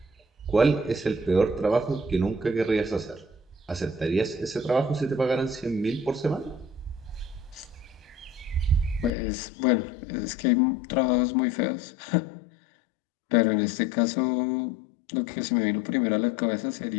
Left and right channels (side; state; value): right; drops out; at 9.1 s